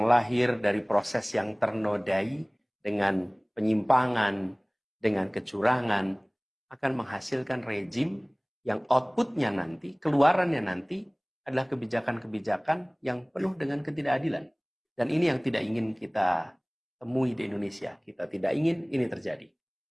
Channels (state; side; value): identical; both; correlation 1.00